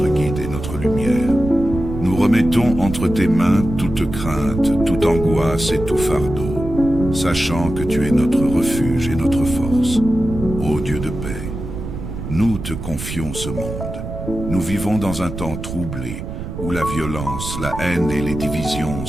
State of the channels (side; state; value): right; noise; rumble, 7 dB below the sound